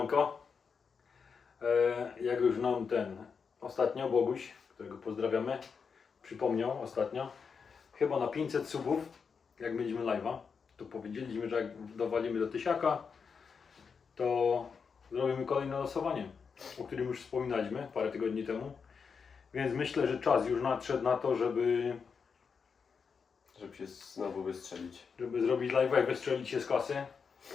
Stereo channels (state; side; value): quieter; right; 5.8 dB